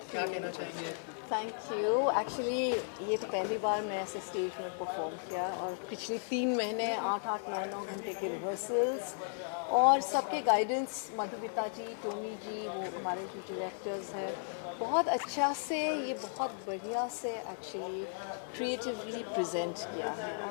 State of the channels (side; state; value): right; silent; digital silence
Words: क्या कहना चाहेंगे? Thank you. एक्चुअली ये तो पहली बार मैं ऐसे स्टेज में परफॉर्म किया और पिछले 3 महीने 8-8 9-9 घंटे के रिहर्सल्स और सबके गाइडेंस, मधुमिता जी, टोनी जी, वो हमारे जो डायरेक्टर्स हैं, बहुत अच्छा से ये बहुत बढ़िया से एक्चुअली क्रिएटिवली प्रेजेंट किया है